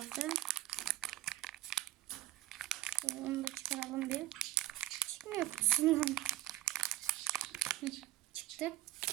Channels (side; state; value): left; quieter; 16.1 dB